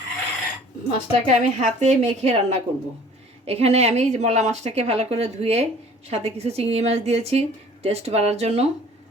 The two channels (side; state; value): both; normal; correlation 0.50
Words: মাছটাকে আমি হাতে মেখে রান্না করব। এখানে আমি মলা মাছটাকে ভালো করে ধুয়ে সাথে কিছু চিংড়ি মাছ দিয়েছি টেস্ট বাড়ার জন্য।